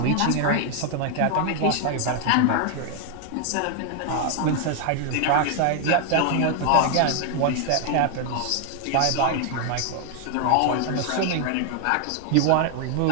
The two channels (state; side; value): different; both; correlation 0.00